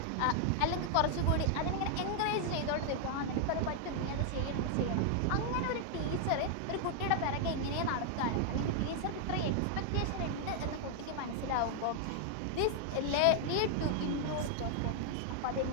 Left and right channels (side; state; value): both; different; correlation 0.00